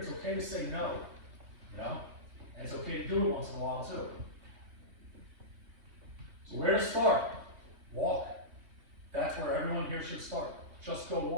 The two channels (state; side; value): late; left; 3.3 ms